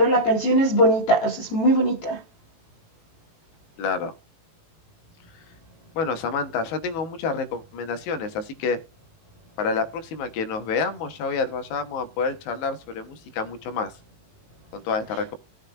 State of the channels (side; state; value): right; late; 18 ms